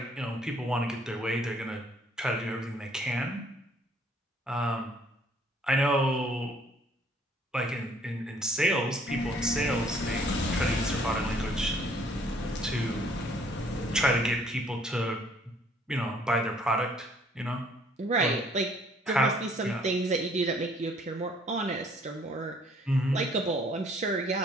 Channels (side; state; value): both; normal; correlation 0.61